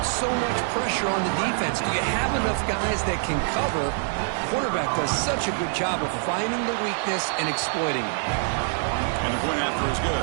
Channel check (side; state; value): left; silent; 57 dB below the other